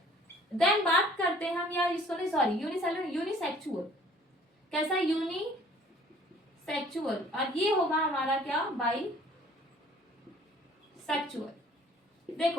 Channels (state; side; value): normal; both; correlation 0.54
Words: देन बात करते हैं हम, या इसको नहीं, सॉरी, यूनिसेलुलर, यूनिसेक्सुअल, कैसा, यूनिसेक्सुअल, और ये होगा हमारा क्या, बाई सेक्सुअल।